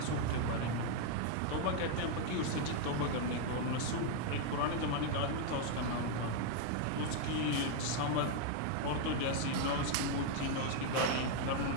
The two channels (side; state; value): both; different; correlation 0.00